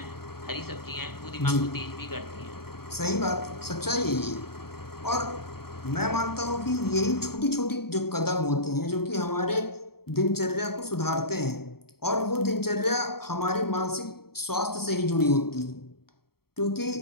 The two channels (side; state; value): right; late; 0.95 ms